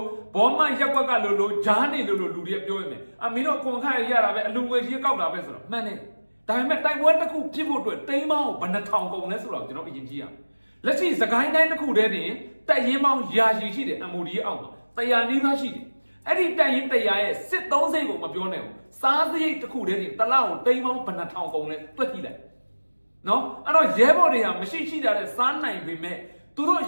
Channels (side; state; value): both; inverted; correlation -1.00